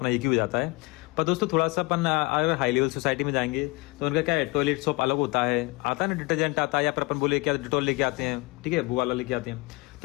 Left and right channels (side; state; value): right; quieter; 24.9 dB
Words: एक ही हो जाता है। पर दोस्तों थोड़ा सा अपन अगर हाई लेवल सोसाइटी में जाएंगे तो उनका क्या है, टॉयलेट सॉप अलग होता है, आता है ना, डिटर्जेंट आता है, या फिर अपन बोले क्या डिटॉल लेके आते हैं, ठीक है, वो वाला लेके आते हैं।